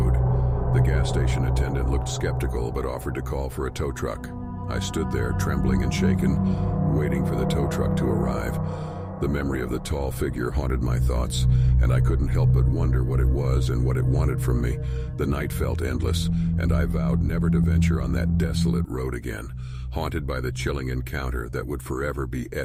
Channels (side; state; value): both; identical; correlation 1.00